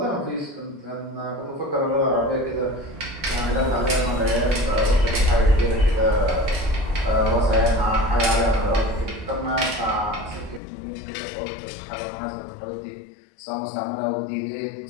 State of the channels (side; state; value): right; drops out; at 10.6 s